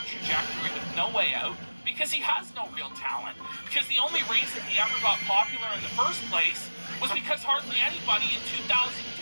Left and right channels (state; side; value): inverted; both; correlation -1.00